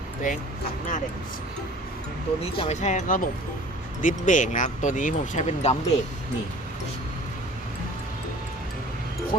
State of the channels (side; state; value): both; normal; correlation 0.47